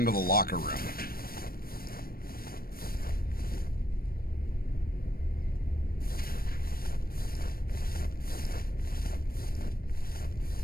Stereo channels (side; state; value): right; late; 0.43 ms